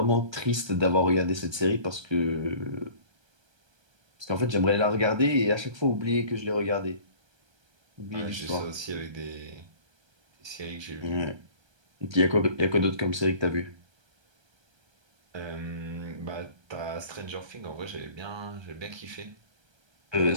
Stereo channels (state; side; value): late; left; 1.3 ms